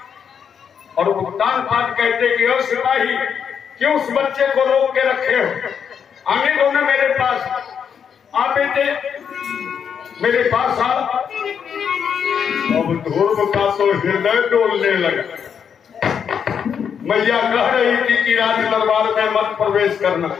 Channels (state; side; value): quieter; right; 7.4 dB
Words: और उत्तान पाठ कहते कि ओ सिपाही क्यों उस बच्चे को रोक के रखे हो, आने दो ना मेरे पास। आ बेटे मेरे पास आ। अब ध्रुव का तो हृदय डोलने लगा। मैया कह रही थी कि राज दरबार में मत प्रवेश करना,